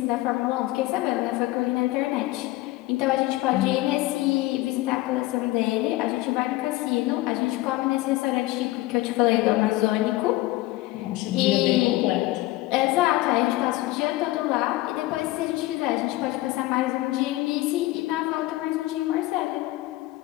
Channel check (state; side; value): quieter; right; 18.5 dB